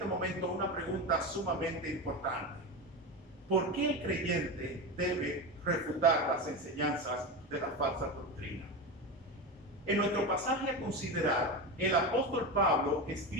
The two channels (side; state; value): both; normal; correlation 0.20